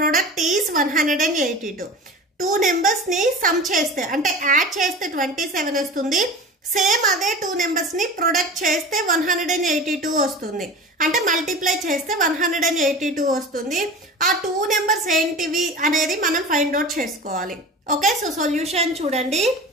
is 182. Two numbers ని సమ్ చేస్తే అంటే యాడ్ చేస్తే 27 వస్తుంది. సేమ్ అదే టూ నెంబర్స్ ని ప్రొడక్ట్ చేస్తే 182 వస్తుంది. అంటే మల్టిప్లై చేస్తే 182 వస్తుంది. ఆ టూ నెంబర్స్ ఏంటివి అనేది మనం ఫైండ్ అవుట్ చేసుకోవాలి. ఓకే, సో సొల్యూషన్ చూడండి.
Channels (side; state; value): both; normal; correlation 0.34